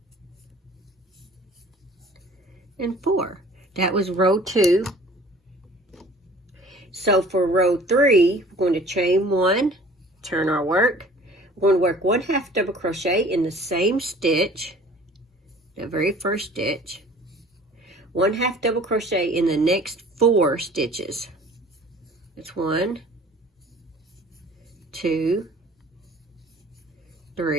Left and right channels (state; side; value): normal; both; correlation 0.49